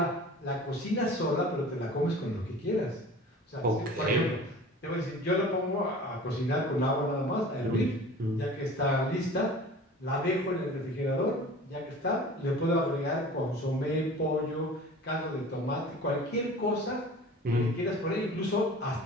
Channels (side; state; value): both; normal; correlation 0.41